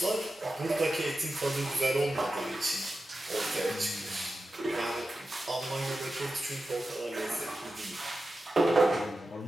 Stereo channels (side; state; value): both; normal; correlation 0.92